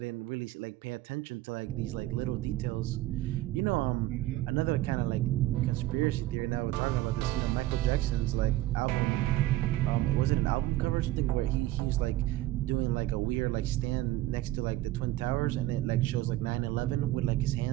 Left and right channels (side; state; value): left; quieter; 15.8 dB